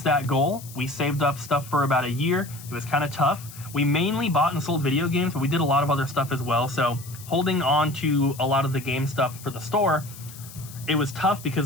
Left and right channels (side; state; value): left; noise; hiss, 17 dB below the sound